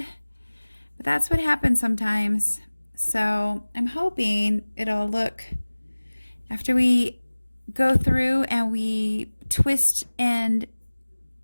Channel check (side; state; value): both; inverted; correlation -1.00